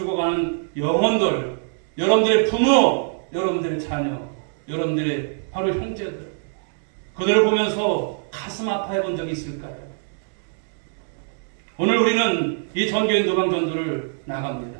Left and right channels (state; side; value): silent; left; digital silence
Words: 영혼들, 여러분들의 부모, 여러분들의 자녀, 여러분들의 바로 형제들, 그들을 보면서 가슴 아파해 본 적이 있을까요? 오늘 우리는 이 전교인 노방전도를 나갑니다.